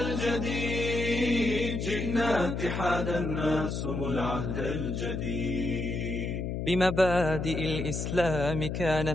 الجديد، جئنا اتحادا نقسم العهد الجديد. بمبادئ الإسلام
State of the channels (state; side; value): noise; left; hum, 3 dB below the sound